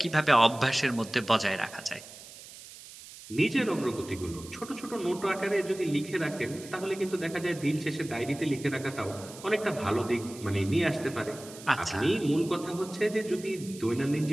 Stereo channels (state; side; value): noise; right; hiss, 16 dB below the sound